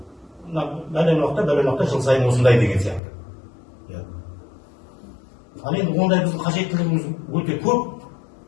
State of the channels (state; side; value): drops out; right; at 3.0 s